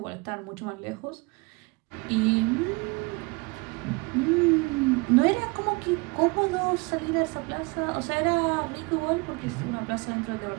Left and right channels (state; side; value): quieter; left; 27.8 dB